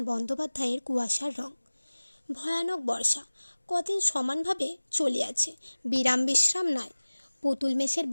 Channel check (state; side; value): inverted; both; correlation -1.00